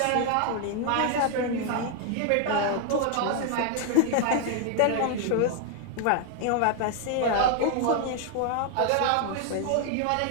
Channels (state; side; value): different; both; correlation 0.00